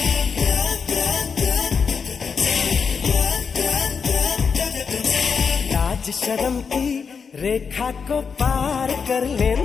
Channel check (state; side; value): quieter; right; 5.9 dB